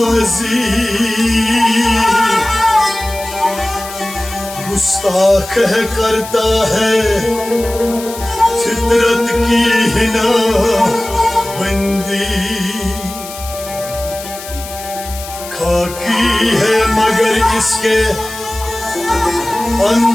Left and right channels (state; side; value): noise; left; hiss, 13 dB below the sound